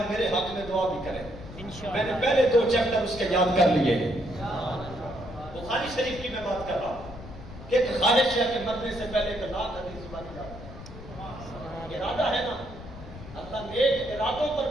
میرے حق میں دعا بھی کریں، میں نے پہلے 2 چیپٹر اس کے یاد کر لیے۔ بخاری شریف کی میں بات کر رہا ہوں کہ ایک خواہش ہے کہ مرنے سے پہلے 1 لاکھ حدیث زبانی یاد کریں، ارادہ ہے نا، اللہ نیک ارادوں پر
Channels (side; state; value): left; noise; rumble, 14 dB below the sound